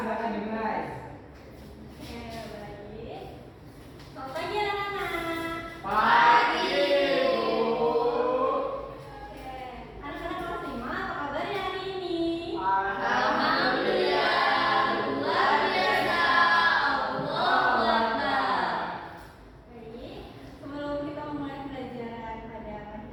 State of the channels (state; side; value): identical; both; correlation 1.00